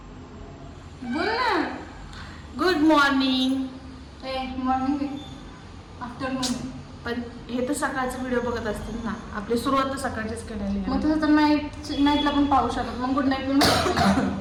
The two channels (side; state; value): both; identical; correlation 1.00